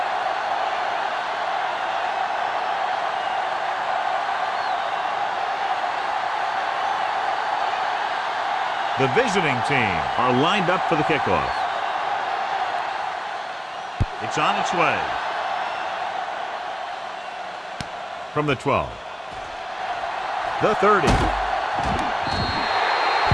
The visiting team are lined up for the kickoff. It's on its way. From the 12. The 30.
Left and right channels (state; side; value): identical; both; correlation 1.00